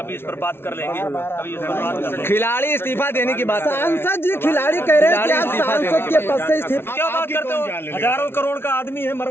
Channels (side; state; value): right; late; 0.12 ms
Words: इस पर बात कर लेंगे, कभी इस पर बात कर लेंगे। खिलाड़ी इस्तीफा देने की बात। सांसद जी, खिलाड़ी कह रहे हैं कि आप सांसद के पद से इस्तीफा। क्या बात करते हो? हजारों करोड़ का आदमी है,